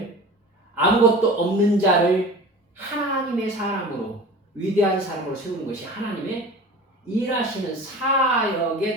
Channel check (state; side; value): normal; both; correlation 0.37